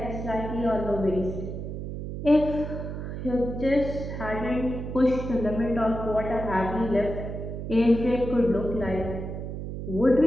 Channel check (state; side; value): noise; right; hum, 6 dB below the sound